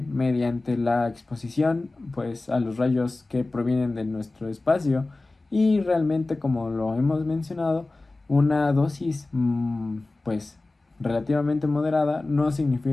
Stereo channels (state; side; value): quieter; right; 3.1 dB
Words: la exposición pues a los rayos que provienen de nuestro espacio, y realmente, como lo hemos mencionado, una dosis pues relativamente moderada no